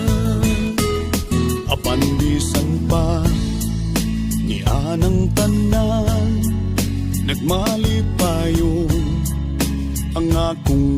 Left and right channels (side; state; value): both; identical; correlation 1.00